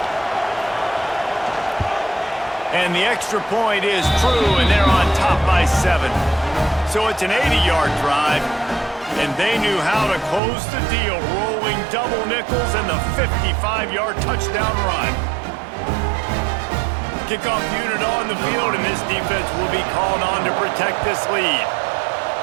And the extra point is true, and they're on top by 7. So it's an 80-yard drive, and they knew how to close the deal, rolling double nickels and the 55-yard touchdown run. Kickoff unit on the field, and this defense will be called on to protect this lead.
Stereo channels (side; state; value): left; drops out; at 10.4 s